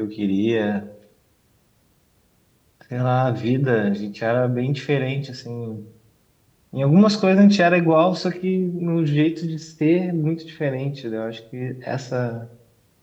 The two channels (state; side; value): identical; both; correlation 1.00